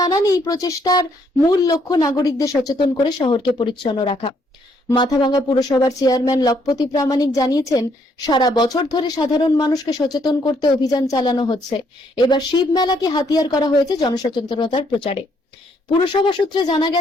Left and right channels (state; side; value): normal; both; correlation 0.70